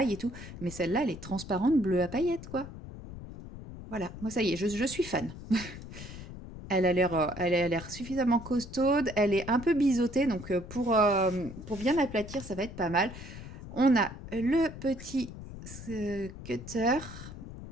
et tout, mais celle-là, elle est transparente, bleue à paillettes, quoi. Voilà, moi ça y est, je suis fan. Elle a l'air suffisamment costaude, elle est un peu biseautée, donc pour bien aplatir, ça va être pas mal. On a le petit cutter.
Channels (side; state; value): left; noise; rumble, 12 dB below the sound